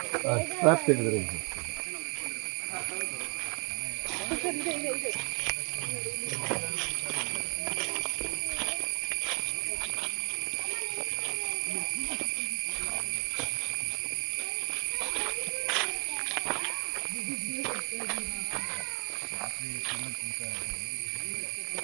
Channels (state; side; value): quieter; left; 32.9 dB